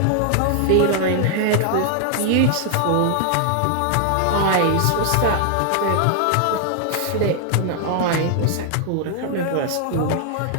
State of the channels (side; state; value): both; different; correlation 0.00